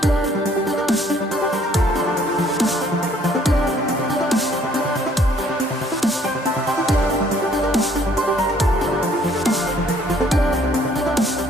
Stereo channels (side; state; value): both; normal; correlation 0.62